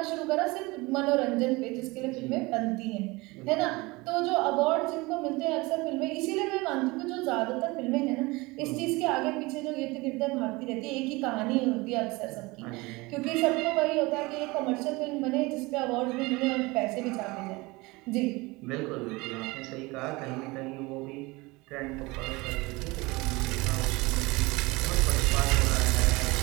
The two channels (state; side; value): quieter; left; 23.3 dB